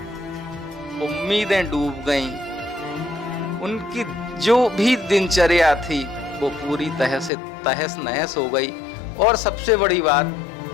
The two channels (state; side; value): drops out; right; at 7.3 s